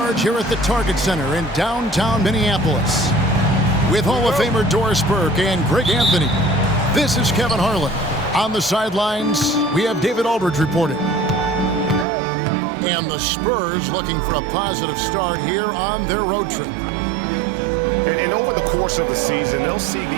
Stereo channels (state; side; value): drops out; left; at 12.1 s